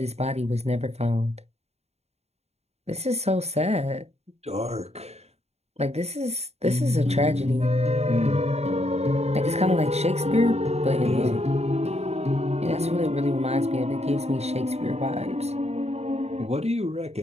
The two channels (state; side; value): late; left; 0.31 ms